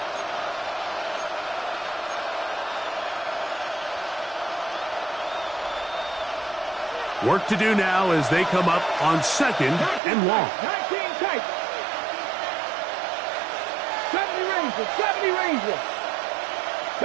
Work to do now as they come up on 2nd and 1. 19 tight. 70 Rangers.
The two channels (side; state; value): left; drops out; at 10.0 s